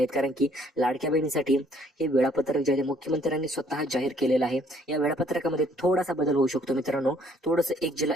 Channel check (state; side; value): normal; both; correlation 0.63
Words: कारण की लाडक्या बहिणीसाठी हे वेळापत्रक जे आहे मुख्यमंत्र्यांनी स्वतः जाहीर केलेलं आहे. या वेळापत्रकामध्ये थोडासा बदल होऊ शकतो मित्रांनो, थोडंसं एक जिल्हा